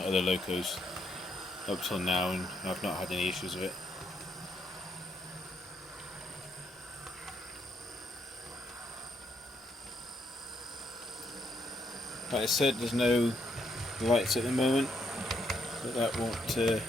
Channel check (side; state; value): both; normal; correlation 0.75